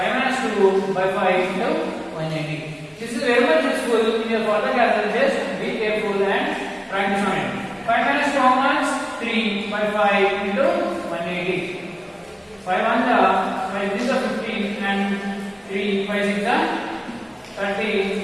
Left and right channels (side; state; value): both; identical; correlation 1.00